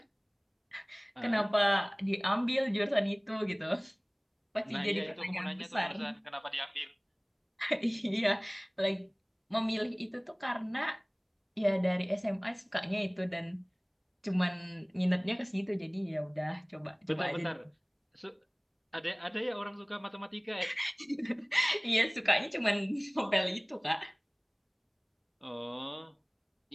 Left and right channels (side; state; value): both; identical; correlation 1.00